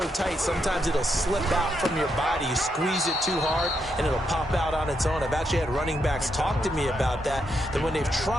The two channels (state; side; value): normal; both; correlation 0.80